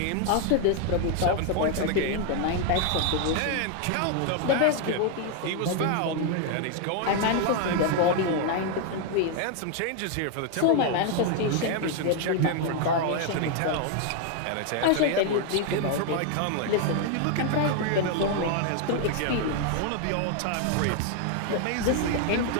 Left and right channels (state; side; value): different; both; correlation 0.01